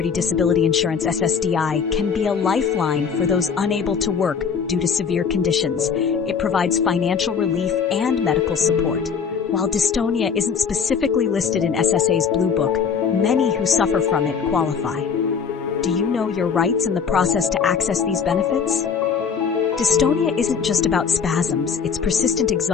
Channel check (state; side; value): quieter; right; 6.4 dB